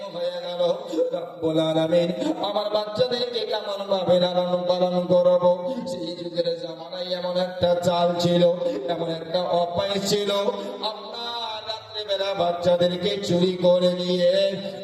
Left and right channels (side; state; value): both; identical; correlation 1.00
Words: হয়ে গেল। রব্বুল আলামিন আমার বাচ্চাদেরকে কেমন ভাবে লালন পালন করবো? সেই যুগের জামানায় এমন একটা চাল ছিল, এমন একটা অভ্যাস ছিল, আপনার রাত্রেবেলা বাচ্চাদেরকে চুরি করে নিয়ে